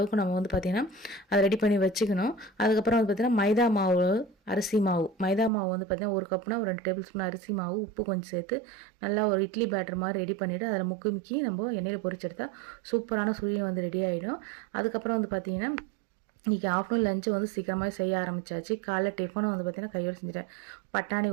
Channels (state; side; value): drops out; left; at 5.5 s